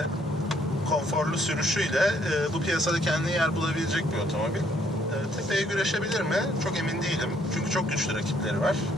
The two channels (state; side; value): normal; both; correlation 0.67